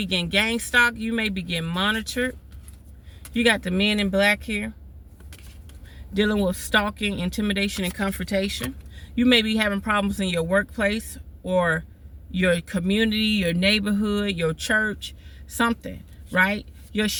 getting gang stalked. You may be getting monitored. You got the men in black here. Dealing with stalking, intimidation, and confrontation. You may be having problems in your workplace or your community, your neighborhood, your church, something, right? Your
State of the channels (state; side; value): identical; both; correlation 1.00